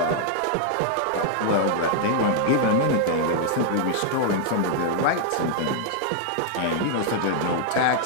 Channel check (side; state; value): both; different; correlation -0.01